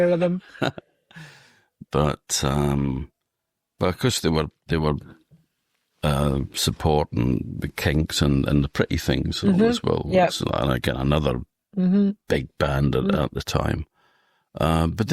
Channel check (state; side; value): identical; both; correlation 1.00